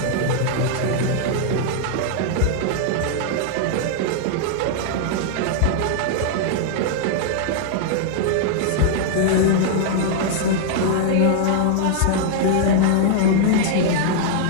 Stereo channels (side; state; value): both; different; correlation -0.01